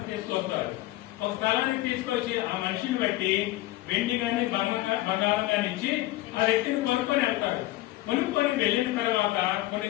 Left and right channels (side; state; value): right; quieter; 17.4 dB